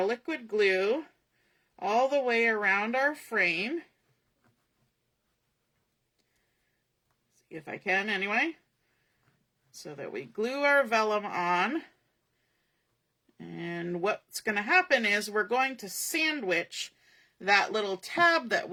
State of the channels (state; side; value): identical; both; correlation 1.00